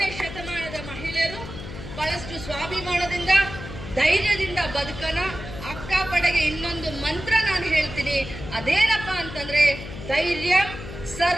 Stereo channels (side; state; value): left; noise; hum, 11 dB below the sound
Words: ಶತಮಾನದ ಮಹಿಳೆಯರು ಬಹಳಷ್ಟು ಸ್ವಾಭಿಮಾನದಿಂದ, ಧೈರ್ಯದಿಂದ ಬದುಕನ. ಅಕ್ಕಪಡೆಗೆ ಇನ್ನೊಂದು ಮಂತ್ರ ನಾನು ಹೇಳ್ತೀನಿ, ಅದೇನಪ್ಪ ಅಂತಂದ್ರೆ ಧೈರ್ಯ